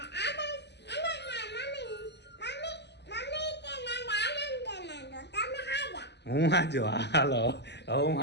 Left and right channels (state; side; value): late; right; 0.50 ms